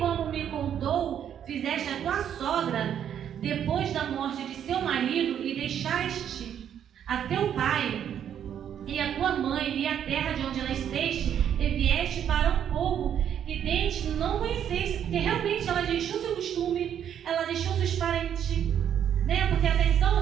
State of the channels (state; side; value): quieter; left; 9.3 dB